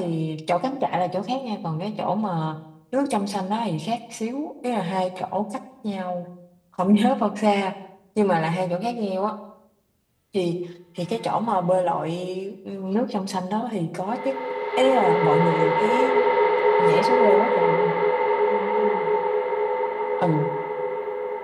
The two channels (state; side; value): identical; both; correlation 1.00